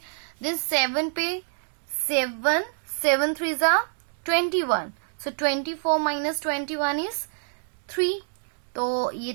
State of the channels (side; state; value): left; silent; digital silence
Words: देन 7 पे 7 7 3 जा 21. So 24 minus 21 is 3. तो ये